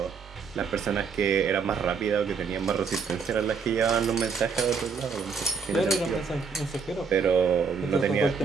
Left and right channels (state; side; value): quieter; left; 5.6 dB